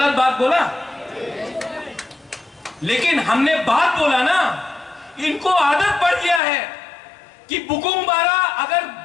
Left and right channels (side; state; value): right; drops out; at 6.4 s